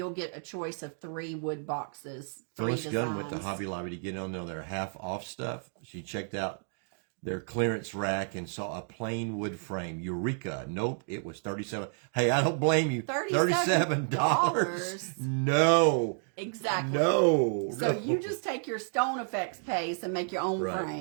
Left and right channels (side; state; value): left; silent; 57 dB below the other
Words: get a choice of 3 wood boxes. 3 Phyllis Gunn went to Hobby Lobby to get on there half off stuff. She checked out their clearance rack and saw a plain wood frame. Eureka. Nope, it was 37. Hey, I don't blame you. $37. No. Exactly. No. So you just take your Stone Effects paste and make your own